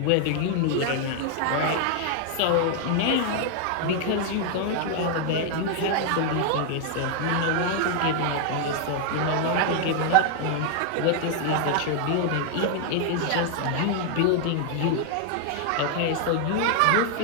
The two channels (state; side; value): different; both; correlation 0.00